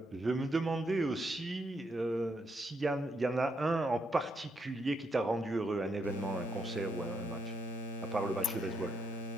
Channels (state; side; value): normal; both; correlation 0.78